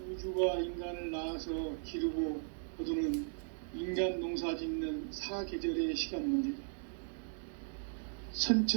우주가 인간을 낳아서 기르고 거두는 인간 농사 짓는 사계절의 시간 문제다.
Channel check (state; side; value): silent; left; digital silence